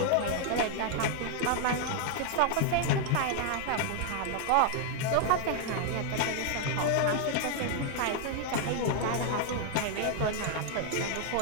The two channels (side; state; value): both; different; correlation 0.00